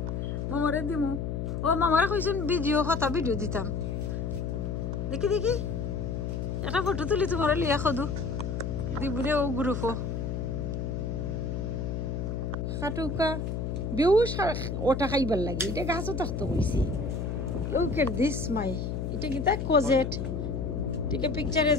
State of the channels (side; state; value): left; noise; hum, 2 dB below the sound